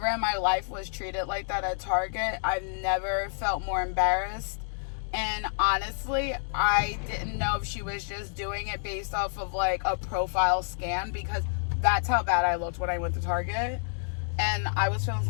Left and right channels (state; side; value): silent; right; digital silence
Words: in my life was treated like that at Target. I've never felt more embarrassed. And honestly, I didn't know if she was just doing it based off of like a profile scan, because that's how bad I looked when I went to Target. And I was feeling